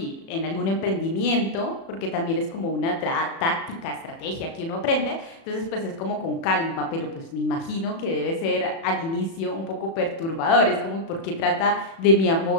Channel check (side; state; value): right; late; 36 ms